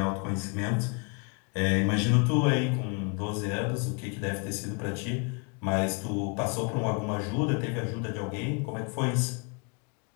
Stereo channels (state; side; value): quieter; right; 34.5 dB